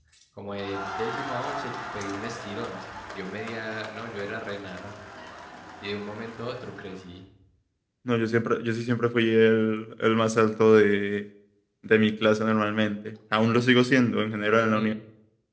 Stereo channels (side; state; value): both; identical; correlation 1.00